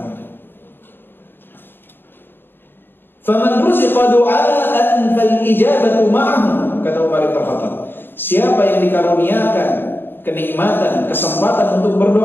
Faman ruziqa du'aan fal ijabatu ma'ahu, kata Umar bin Khattab. Siapa yang dikaruniakan kenikmatan, kesempatan untuk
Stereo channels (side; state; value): right; late; 0.098 ms